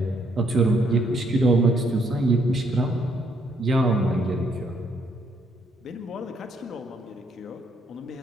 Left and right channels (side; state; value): both; normal; correlation 0.71